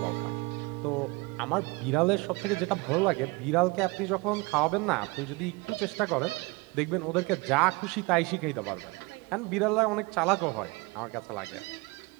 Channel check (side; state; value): left; quieter; 25.4 dB